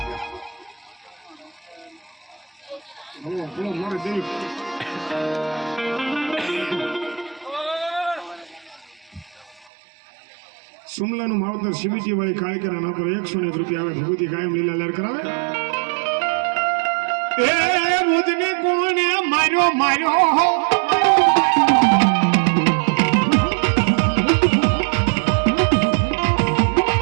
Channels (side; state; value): left; drops out; at 9.7 s